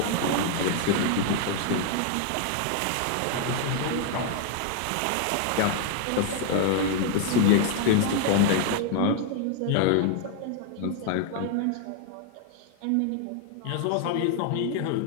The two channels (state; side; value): different; both; correlation 0.00